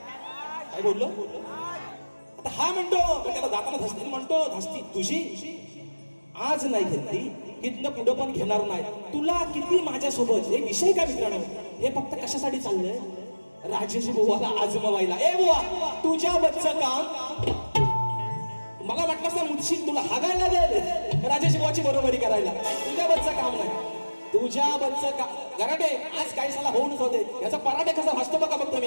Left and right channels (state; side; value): inverted; both; correlation -1.00